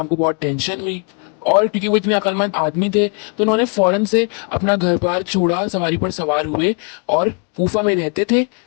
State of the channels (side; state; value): right; quieter; 36.7 dB